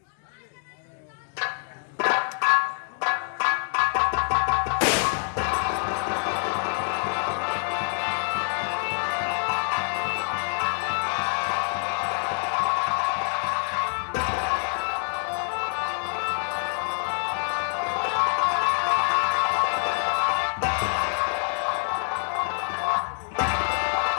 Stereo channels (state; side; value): silent; right; 57 dB below the other